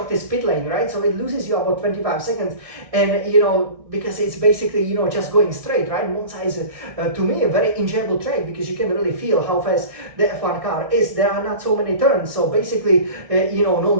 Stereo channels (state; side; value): late; left; 1.6 ms